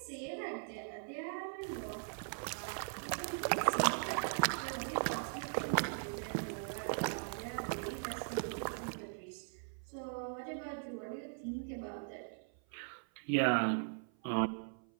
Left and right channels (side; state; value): left; silent; 51 dB below the other